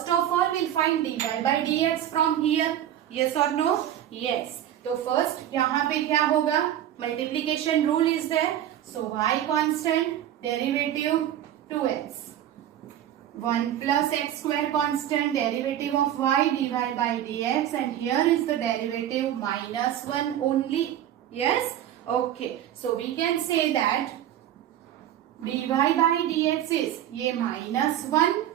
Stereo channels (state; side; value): quieter; left; 11.5 dB